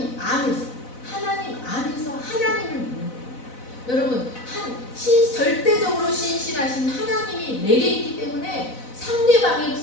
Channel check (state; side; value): late; right; 4.0 ms